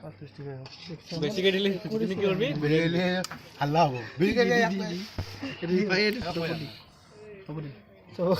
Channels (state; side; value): identical; both; correlation 1.00